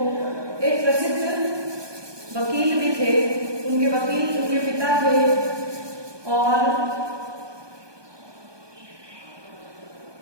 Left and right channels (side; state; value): left; late; 1.2 ms